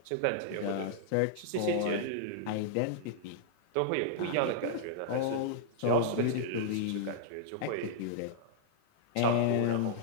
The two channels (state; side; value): different; both; correlation -0.01